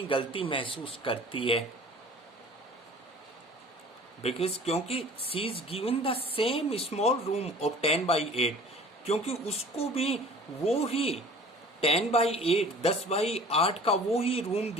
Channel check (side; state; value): both; normal; correlation 0.46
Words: गलती महसूस करती है। बिकॉज क्योंकि she is given the same small room of 10/8, क्योंकि उसको भी वो ही 10/8 10/8 का वो ही रूम